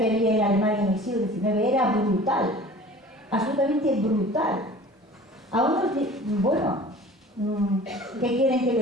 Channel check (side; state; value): both; normal; correlation 0.44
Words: había en Alemania en el siglo XIX era brutal, absolutamente brutal. A unos, bueno, ¿qué quieren que